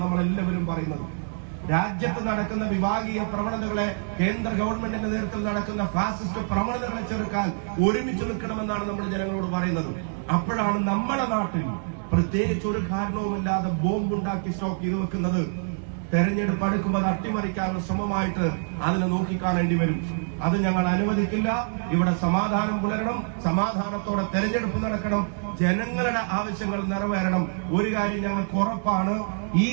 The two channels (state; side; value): silent; left; 61 dB below the other